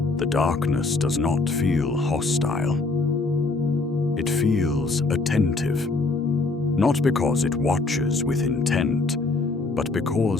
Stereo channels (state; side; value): quieter; right; 3.5 dB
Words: The darkness does not feel hostile. It feels attentive, not because it watches with intent, but